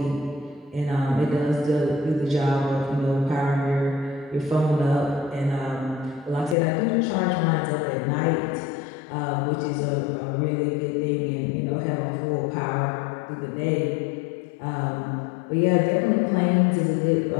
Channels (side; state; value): right; drops out; at 6.6 s